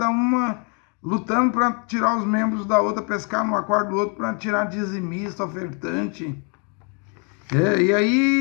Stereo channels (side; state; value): right; quieter; 36.7 dB